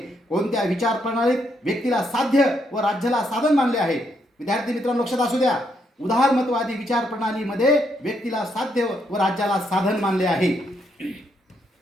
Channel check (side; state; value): both; normal; correlation 0.76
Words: कोणत्या विचार प्रणालीत व्यक्तीला साध्य व राज्याला साधन मानले आहे? विद्यार्थी मित्रांनो, लक्षात असू द्या, उदारमतवादी विचार प्रणालीमध्ये व्यक्तीला साध्य व राज्याला साधन मानले आहे.